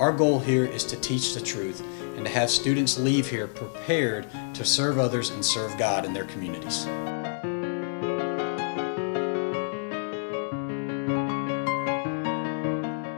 goal here is to teach the truth and to have students leave here prepared to serve others and serve God in their communities.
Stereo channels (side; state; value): right; silent; 60 dB below the other